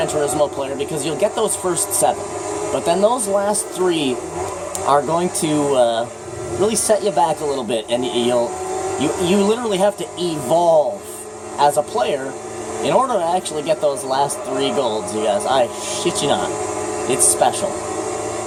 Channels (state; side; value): identical; both; correlation 1.00